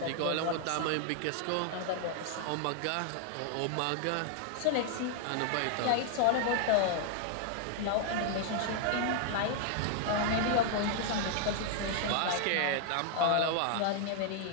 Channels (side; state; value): both; different; correlation 0.00